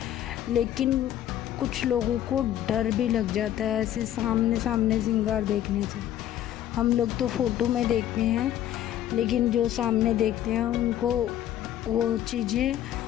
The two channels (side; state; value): right; quieter; 11.8 dB